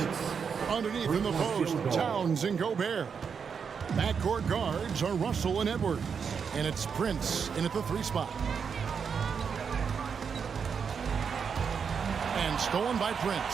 underneath in the post, Towns and Gobert. Backcourt guards are Russell and Edwards. And it's Prince in at the 3 spot. And stolen by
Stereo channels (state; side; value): quieter; left; 6.4 dB